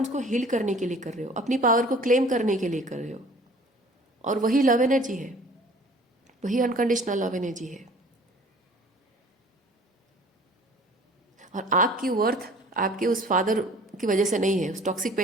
हील करने के लिए कर रहे हो, अपनी पावर को क्लेम करने के लिए कर रहे हो, और वही लव एनर्जी है, वही अनकंडीशनल लव एनर्जी है। और आपकी वर्थ आपके उस फादर की वजह से नहीं है, उस टॉक्सिक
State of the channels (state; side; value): normal; both; correlation 0.49